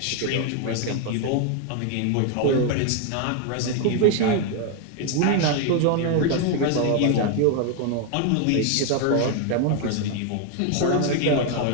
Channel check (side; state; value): both; different; correlation 0.01